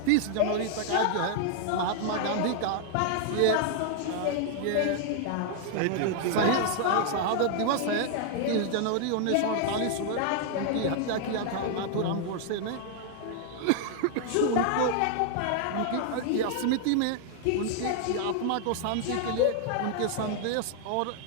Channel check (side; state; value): both; different; correlation 0.00